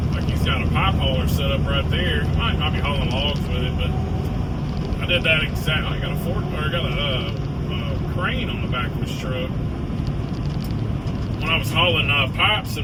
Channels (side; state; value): both; identical; correlation 1.00